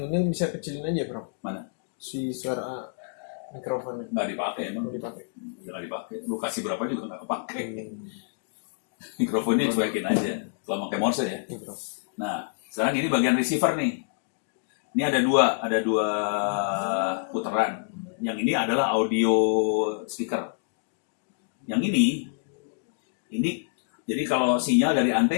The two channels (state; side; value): silent; right; digital silence